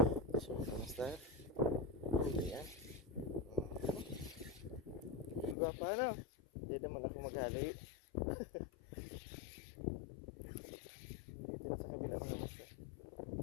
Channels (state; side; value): drops out; right; at 5.6 s